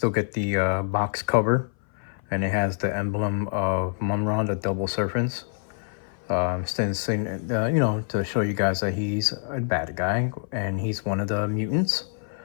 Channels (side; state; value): right; silent; 58 dB below the other